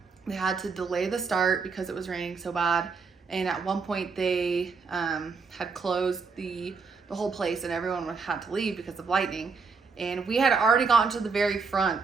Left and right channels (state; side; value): quieter; left; 5.0 dB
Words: they had to delay the start because it was raining so bad. And at one point they had closed the whole place, and everyone had to leave because of lightning. And we had already gotten to the very